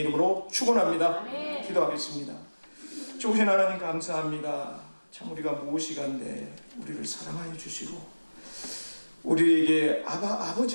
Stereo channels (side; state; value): both; inverted; correlation -1.00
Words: 이름으로 축원합니다. 기도하겠습니다. 좋으신 하나님 감사합니다. 참 우리가 무엇이간데 우리를 사랑하여 주시고 우리에게